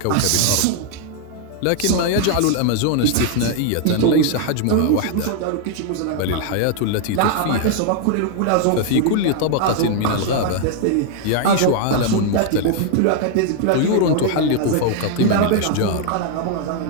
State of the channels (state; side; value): different; both; correlation 0.00